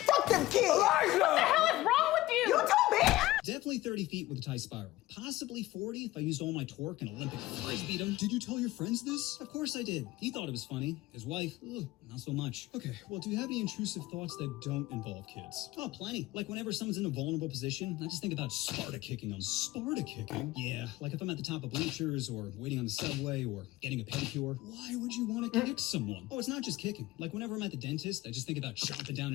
Fuck them kids! Elijah! What the hell is wrong with you? You told me! Definitely 30 feet with a tight spiral. Possibly 40 if I used all my torque and Olympic frisbeed him. Did you tell your friends this? Of course I did. He thought it was funny. His wife, not so much. Okay, well, do you have any intrusive thoughts that don't involve kids? Oh, plenty. Like whenever someone's in a vulnerable position, I just think about Sparta kicking them. Sparta kicking? Yeah, like if I'm at the top of bleachers or waiting on the subway or getting a pedicure. Why would you want to kick someone? Oh, it's not just kicking. Like whenever I'm at the dentist, I just think about chomping down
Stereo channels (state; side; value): quieter; right; 17.4 dB